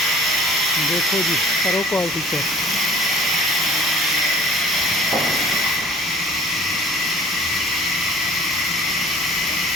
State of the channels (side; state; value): both; normal; correlation 0.49